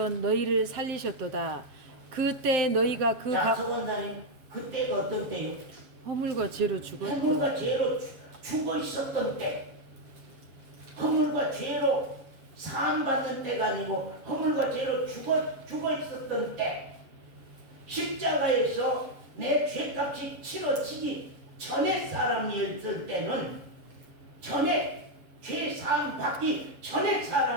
너희를 살리셨도다. 그때 너희가 자, 서 원사님 그때가 어떤 때요? 허물과 죄로 죽었고 허물과 죄로 죽어 있었던 때, 허물과 죄로 사함받는 때가 아니고 허물과 죄로 죽어 있었던 때, 십자가에서 내 죄값이 치러지기 전에 사람이었을 때는, 전에 죄 사함 받기 전에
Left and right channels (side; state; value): left; late; 7.4 ms